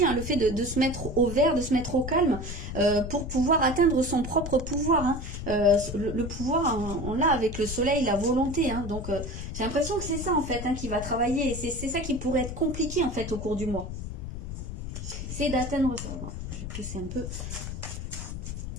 hein, le fait de se mettre au vert, de se mettre au calme pour pouvoir atteindre son propre pouvoir. Hein. Le pouvoir, hein, on l'a avec le soleil, la volonté. Hein. Donc j'ai l'impression que c'est ça en fait, hein, qui va travailler. Et c'est ça qui pourrait être compliqué en fait au cours du mois. C'est d'atteindre ça. Bon, je vais pousser un peu.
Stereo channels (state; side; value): noise; left; rumble, 7 dB below the sound